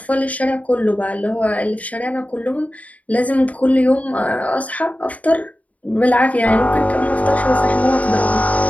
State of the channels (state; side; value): late; right; 0.070 ms